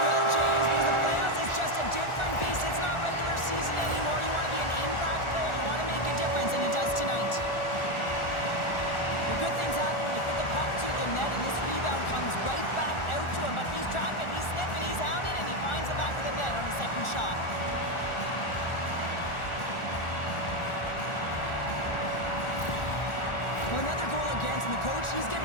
will, James, because the playoffs is just a different beast. It's not regular season anymore. You want to be an impact player, you want to make a difference, and he does tonight. The good things happen when you put the puck to the net, and this rebound comes right back out to him, but he's tracking, he's sniffing, he's hounded, and he finds the back of the net on the second shot. Well, another goal against, and the coach, he's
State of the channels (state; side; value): late; right; 1.4 ms